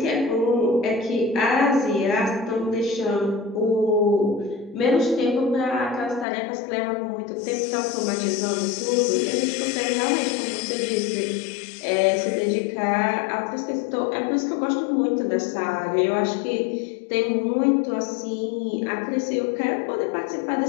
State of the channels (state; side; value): drops out; right; at 6.2 s